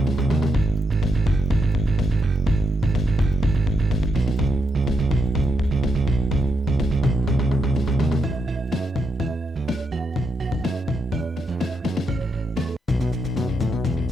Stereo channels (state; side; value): normal; both; correlation 0.82